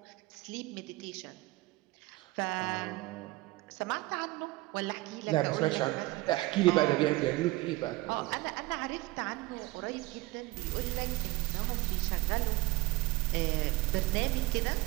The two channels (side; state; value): left; quieter; 20.0 dB